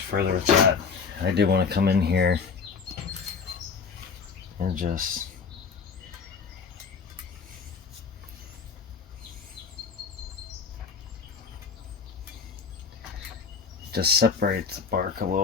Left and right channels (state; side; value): quieter; right; 5.6 dB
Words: further with that, I do want to come in here and just separate the bark a